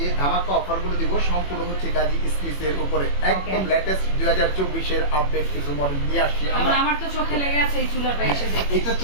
ধামাকা অফারগুলো দিব সম্পূর্ণ হচ্ছে গাজী স্মিথের উপরে। একদম লেটেস্ট 2024 এর আপডেট কিছু মডেল নিয়ে আসছি আমরা। আমার তো চোখে লেগে আছে এই চুলাটা এসে দেখে। এটা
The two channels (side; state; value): right; late; 21 ms